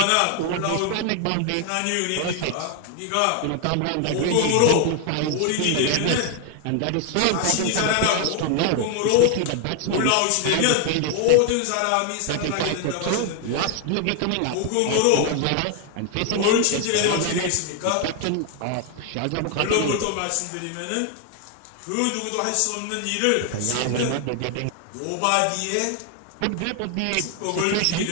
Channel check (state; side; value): different; both; correlation 0.00